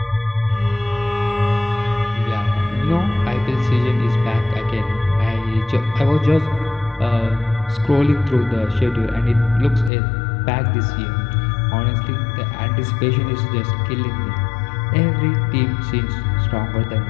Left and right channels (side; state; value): right; drops out; at 9.9 s